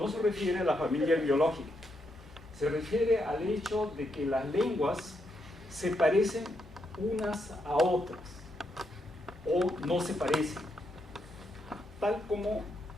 se refiere a la familia biológica, se refiere al hecho de que las lenguas se parecen unas a otras o no se parecen. Tal como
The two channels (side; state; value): both; normal; correlation 0.80